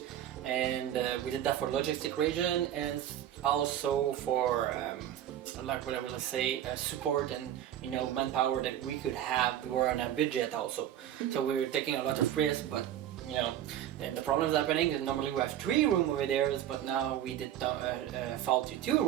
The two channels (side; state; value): left; quieter; 11.4 dB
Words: and we did that for logistic reason and also for like what I will say, support and manpower that we could have. We were on a budget also, so we were taking a lot of risk, but and the problem is happening is normally we have 3 rooms over there, but now we did fall to 2